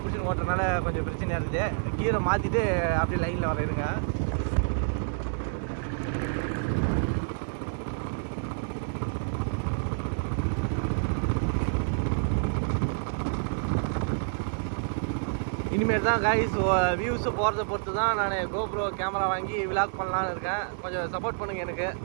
பிடிச்சி ஓட்டுறதுனால கொஞ்சம் பிரச்சனையாக இருக்குது. கீரை மாற்றிட்டு அப்படியே லைனில் வர இருங்க. இனிமேல் தான் கைஸ் வியூஸு போகிறத பொறுத்து தான் நான் கோப்ரோ கேமரா வாங்கி விலாக் பண்ணலான்னு இருக்கேன். கொஞ்சம் சப்போர்ட் பண்ணுங்கள் எனக்கு.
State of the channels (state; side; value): silent; left; 59 dB below the other